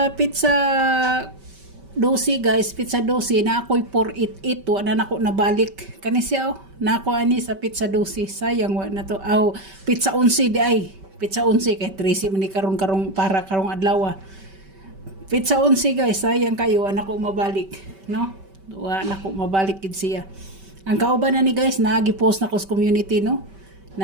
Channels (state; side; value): late; left; 5.2 ms